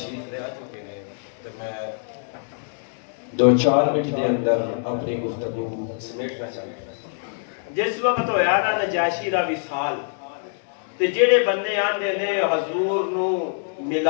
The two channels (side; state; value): right; silent; digital silence